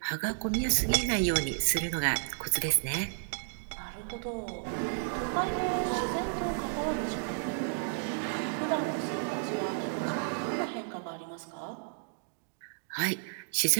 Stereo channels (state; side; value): silent; left; digital silence